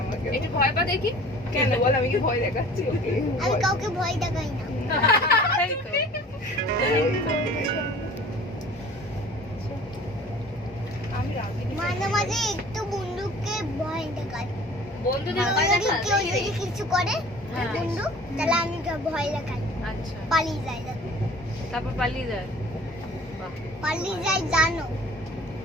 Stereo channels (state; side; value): normal; both; correlation 0.47